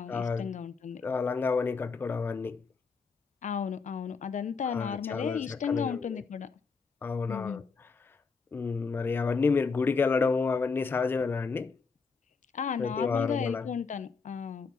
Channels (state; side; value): quieter; right; 5.0 dB